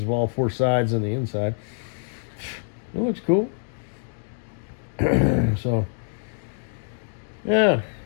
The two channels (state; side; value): silent; right; digital silence